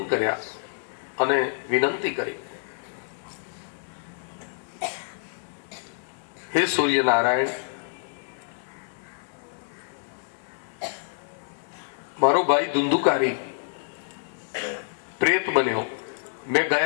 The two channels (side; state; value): right; silent; digital silence